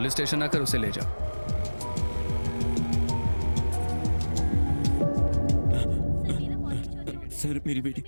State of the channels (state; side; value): inverted; both; correlation -1.00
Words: स्टेशन आकर उसे ले जाओ। सर मेरी बेटी